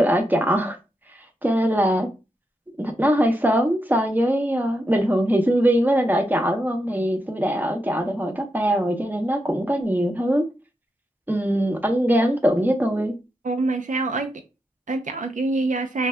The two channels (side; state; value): both; normal; correlation 0.84